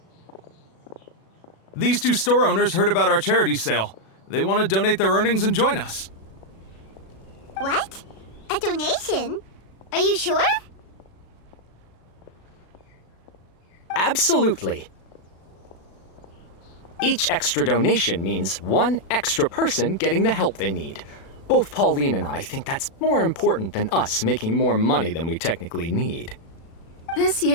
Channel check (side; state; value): right; late; 36 ms